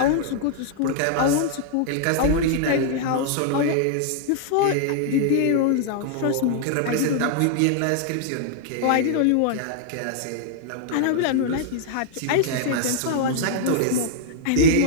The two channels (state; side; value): different; both; correlation -0.01